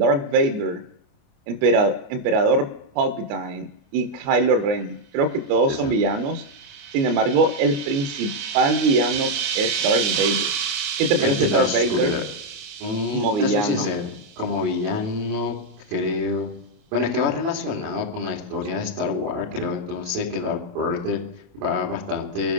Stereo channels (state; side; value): late; left; 28 ms